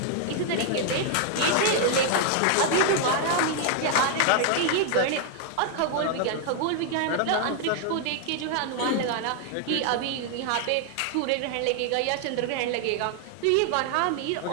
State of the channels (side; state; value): both; different; correlation 0.00